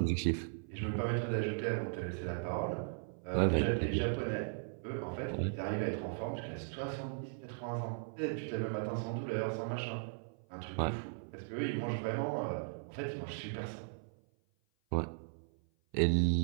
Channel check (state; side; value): silent; left; 53 dB below the other